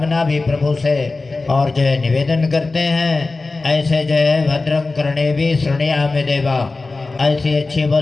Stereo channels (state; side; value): quieter; right; 3.6 dB